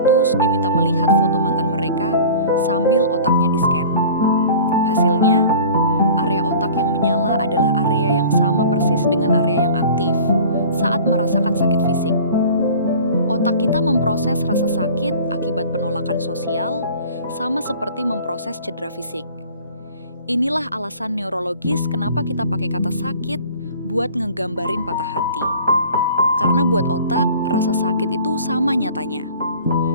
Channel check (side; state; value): both; inverted; correlation -0.44